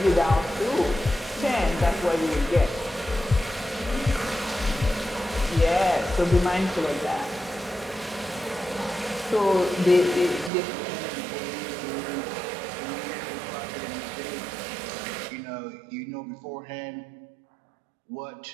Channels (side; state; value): left; drops out; at 10.5 s